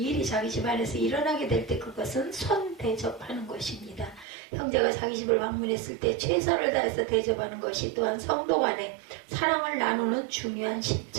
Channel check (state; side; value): drops out; left; at 4.2 s